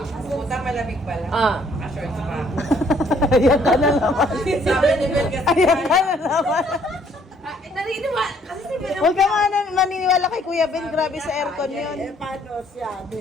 Puta malamig pala. Shorts pa. Ayan ka na naman. Sabi ni Bel kasi. Ayan ka na naman. Nariniwa. Kasi si Bel. Huwag ka maniniwala kay Kuya Ben. Grabe sa aircon yun. Paano siya?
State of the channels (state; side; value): normal; both; correlation 0.64